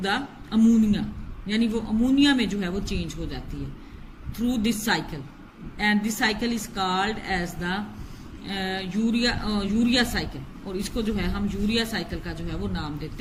ammonia, यानी वो अमोनिया में जो है वो चेंज हो जाती है through this cycle, and this cycle is called as the urea cycle. और इसको जो है हम यूरिया साइकिल का जो है वो नाम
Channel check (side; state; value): both; identical; correlation 1.00